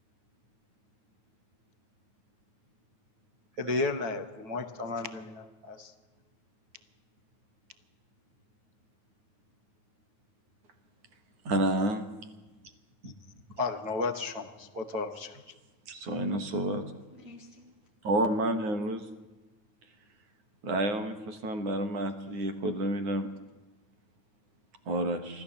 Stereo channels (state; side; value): late; left; 9.4 ms